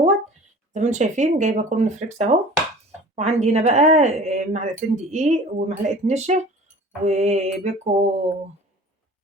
زي ما انتم شايفين جايبة كورن فليكس اهو، وعندي هنا بقى معلقتين دقيق ومعلقة نشا وبيكو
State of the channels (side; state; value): both; normal; correlation 0.43